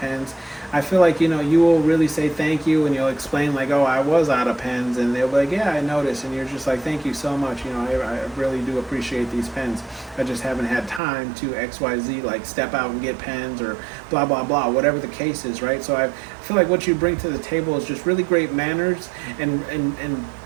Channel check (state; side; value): drops out; left; at 11.0 s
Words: I feel like, you will really say thank you, and you'll explain like, oh, I was out of pens, and they'll be like, yeah, I noticed, and you're just like, thank you so much. I really do appreciate these pens. I just haven't had time to XYZ, like step out and get pens or blah, blah, blah, whatever the case is, right? So I feel like what you bring to the table is just really great manners and